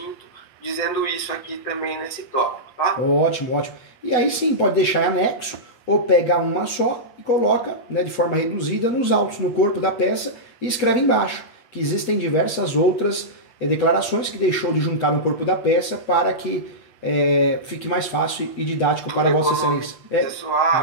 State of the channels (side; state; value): right; late; 8.2 ms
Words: dizendo isso aqui também nesse tópico, tá? Ótimo, ótimo. E aí sim, pode deixar em anexo, ou pega uma só e coloca, né, de forma reduzida nos autos, no corpo da peça, e escreve embaixo que existem diversas outras declarações que deixou de juntar no corpo da peça para que fique mais fácil e didático para Vossa Excelência.